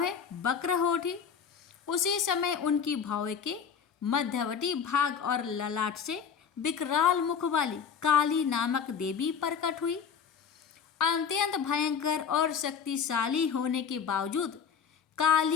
वक्र हो उठी। उसी समय उनकी भौवें के मध्यवर्ती भाग और ललाट से विकराल मुख वाली काली नामक देवी प्रकट हुई। अत्यंत भयंकर और शक्तिशाली होने के बावजूद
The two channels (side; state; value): right; quieter; 6.9 dB